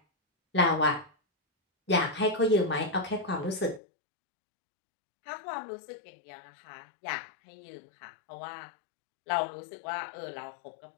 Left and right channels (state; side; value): drops out; right; at 3.8 s